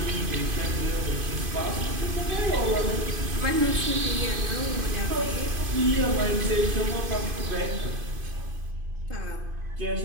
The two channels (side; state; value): left; late; 2.5 ms